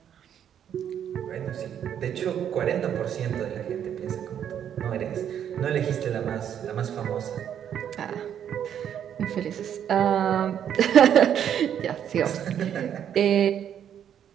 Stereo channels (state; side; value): quieter; left; 9.3 dB